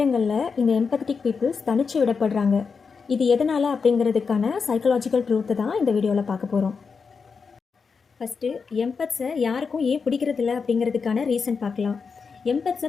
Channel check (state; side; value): quieter; right; 5.3 dB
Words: இந்த எம்பத்தட்டிக் பீப்புள்ஸ் தனிச்சு விடப்படுறாங்க. இது எதனால் அப்படிங்கிறதுக்கான சைக்கலாஜிக்கல் ட்ரூத்தை தான் இந்த வீடியோவில் பார்க்க போகிறோம். ஃபஸ்ட்டு எம்பத்ஸை யாருக்கும் ஏன் பிடிக்கிறதில்ல அப்படிங்கிறதுக்கான ரீசன் பார்க்கலாம். எம்பத்ஸை